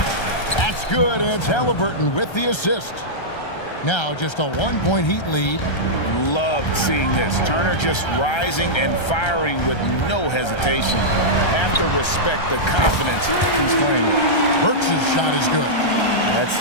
That's good, and it's Halliburton with the assist. Now just a 1-point Heat lead. Loved seeing this. Turner just rising and firing with no hesitation. Have to respect the confidence he's playing with. Burks' shot is good.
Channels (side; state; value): right; late; 1.3 ms